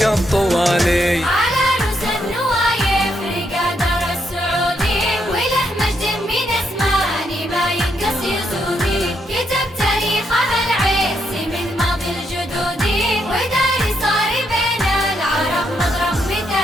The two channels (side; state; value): both; normal; correlation 0.77